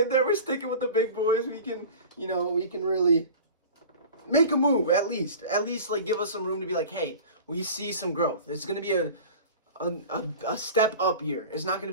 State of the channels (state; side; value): inverted; both; correlation -0.38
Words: there. We're sticking with the big boys. We can really make a move at least like give us some room to be like, hey, we see some growth. It's going to be a step up year. It's not going